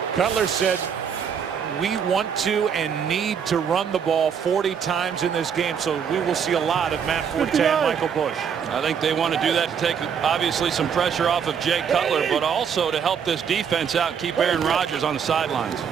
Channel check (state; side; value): quieter; left; 7.4 dB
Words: Cutler said, we want to and need to run the ball 40 times in this game, so we will see a lot of Matt Forte and Michael Bush. I think they want to do that to take obviously some pressure off of Jay Cutler, but also to help this defense out, keep Aaron Rodgers on the sidelines.